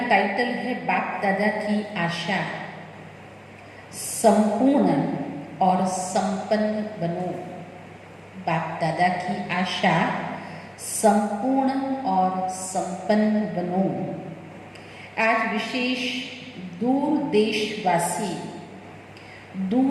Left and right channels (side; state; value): both; identical; correlation 1.00